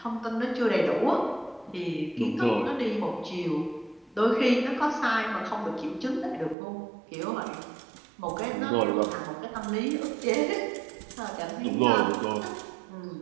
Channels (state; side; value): drops out; left; at 6.6 s